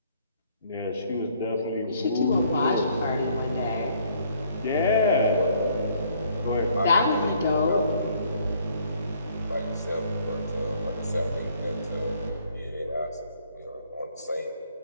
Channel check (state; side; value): inverted; both; correlation -0.64